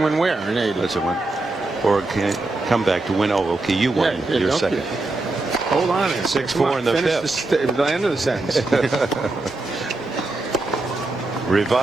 win where in 80? That's a win. Borg can't come back to win. Oh, okay. You won. Yeah, You're don't second. Hold on. 6-4 in the fifth. The end of the sentence.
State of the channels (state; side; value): quieter; left; 3.0 dB